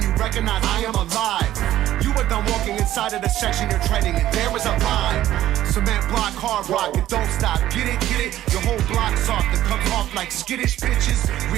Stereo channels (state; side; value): quieter; left; 13.4 dB